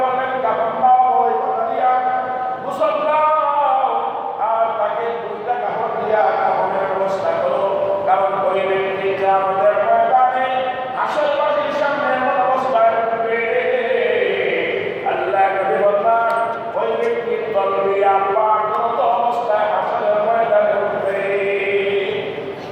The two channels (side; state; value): both; identical; correlation 1.00